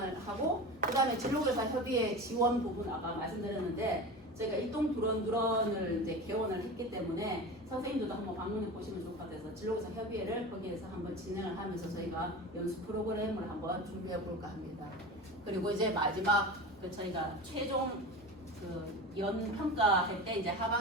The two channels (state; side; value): normal; both; correlation 0.30